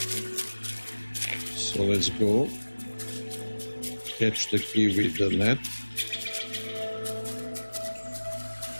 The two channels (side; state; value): both; inverted; correlation -1.00